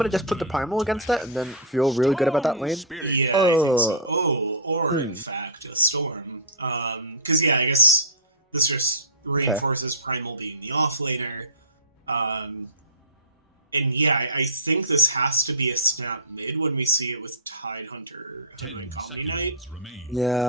to just put the Primal against it and then feel really good about that lane? Yeah, I think so. Or in fact, a Storm. Because yeah, I guess this just reinforces Primal being the offlaner. And yeah, I think this has to be a snap mid when we see it with Tidehunter and Omni Knight.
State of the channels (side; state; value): both; normal; correlation -0.17